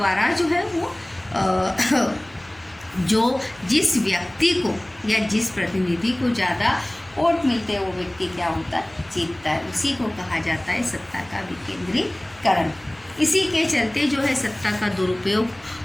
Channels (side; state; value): left; noise; hum, 28 dB below the sound